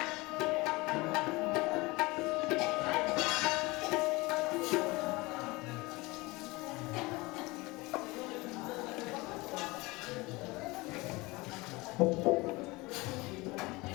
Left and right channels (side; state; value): right; quieter; 23.0 dB